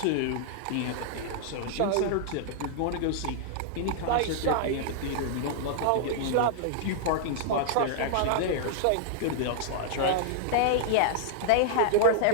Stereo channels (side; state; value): both; different; correlation -0.01